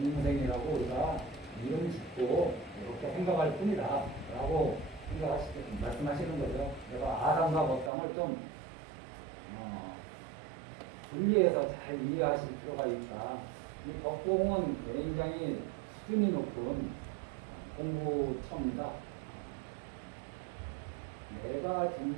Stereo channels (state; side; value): drops out; left; at 7.9 s